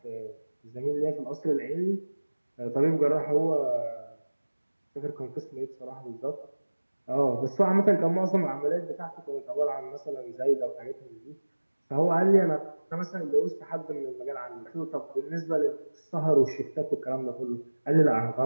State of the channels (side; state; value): both; inverted; correlation -1.00